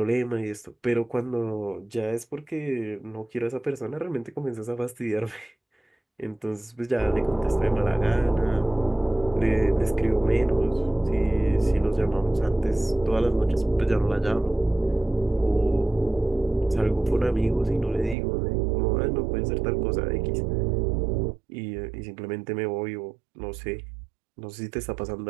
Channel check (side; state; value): left; drops out; at 18.2 s